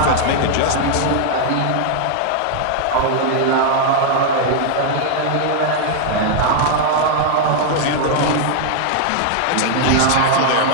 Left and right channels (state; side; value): different; both; correlation 0.00